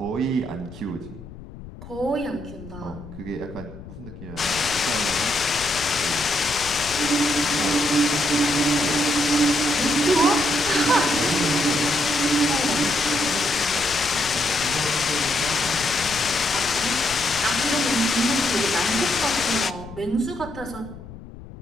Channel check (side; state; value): left; noise; rumble, 15 dB below the sound